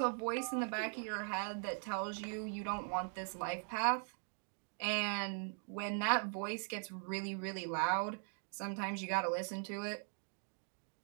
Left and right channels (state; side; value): silent; left; 51 dB below the other